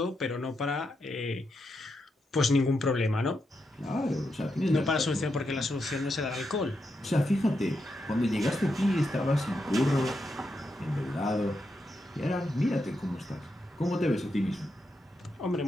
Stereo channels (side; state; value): both; normal; correlation 0.84